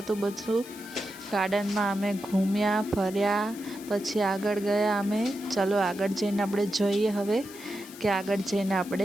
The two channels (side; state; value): left; noise; hiss, 17 dB below the sound